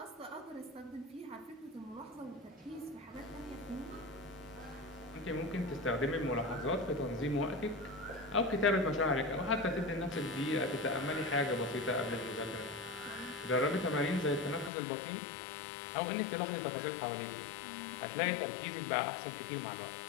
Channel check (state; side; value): drops out; right; at 14.7 s